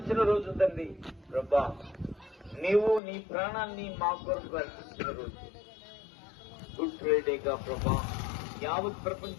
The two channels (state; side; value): drops out; right; at 3.0 s